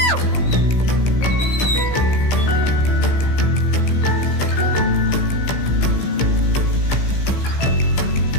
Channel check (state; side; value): late; right; 15 ms